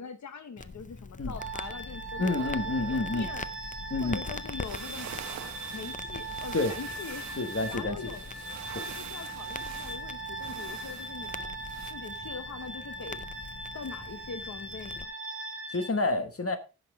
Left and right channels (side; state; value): both; normal; correlation 0.13